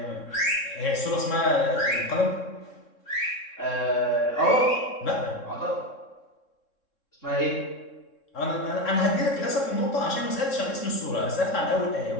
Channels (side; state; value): right; late; 3.7 ms